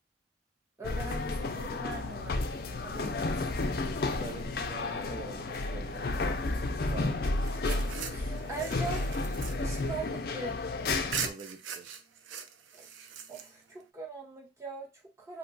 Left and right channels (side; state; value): both; normal; correlation 0.50